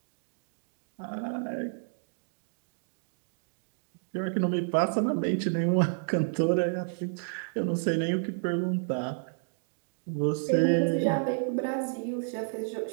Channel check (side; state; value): left; silent; digital silence